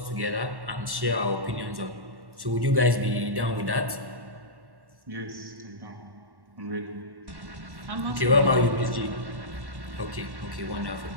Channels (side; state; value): left; late; 1.1 ms